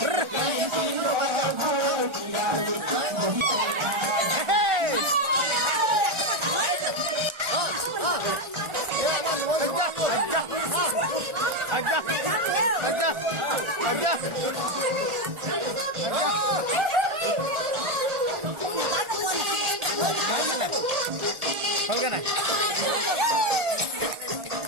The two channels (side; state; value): left; late; 1.4 ms